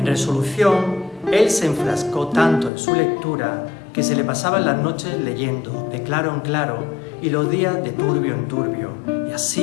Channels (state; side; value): drops out; right; at 2.7 s